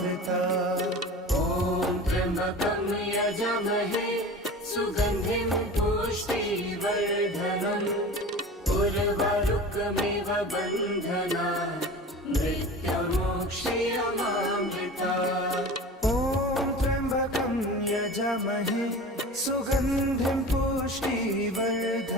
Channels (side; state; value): both; normal; correlation 0.36